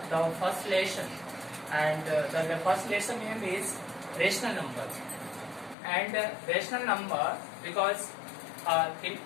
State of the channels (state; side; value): drops out; right; at 5.8 s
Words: the first lesson, and the first lesson name is rational numbers. And rational number, because in